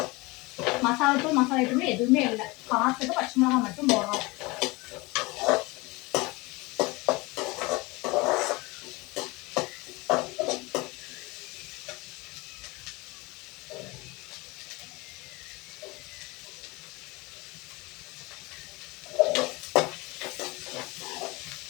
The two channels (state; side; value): quieter; right; 24.0 dB